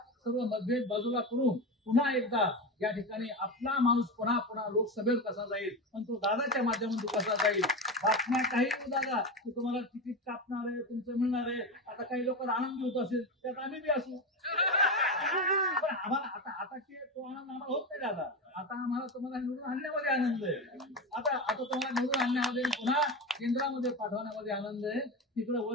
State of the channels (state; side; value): normal; both; correlation 0.19